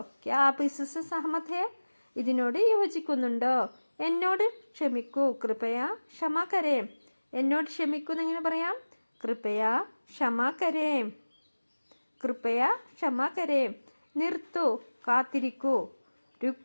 ക്യാ ആപ്പ് ഇസ്സെ സഹമത് ഹേ, ഇതിനോട് യോജിക്കുന്നുണ്ടോ? എന്നോട് ക്ഷമിക്കൂ. കൃപയ ക്ഷമാ കരേം, എന്നോട് ക്ഷമിക്കൂ എന്നെങ്ങനെ പറയാം? കൃപയ ക്ഷമാ കരേം, കൃപയ ക്ഷമാ കരേം. നിർത്തൂ, കാത്തിരിക്കൂ.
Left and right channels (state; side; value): inverted; both; correlation -1.00